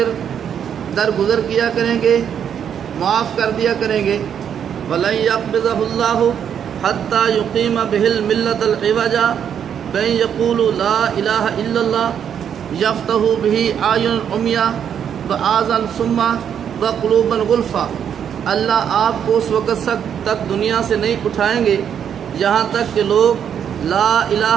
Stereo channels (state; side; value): quieter; left; 8.5 dB